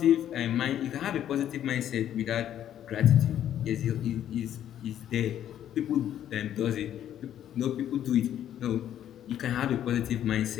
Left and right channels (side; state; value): right; quieter; 10.8 dB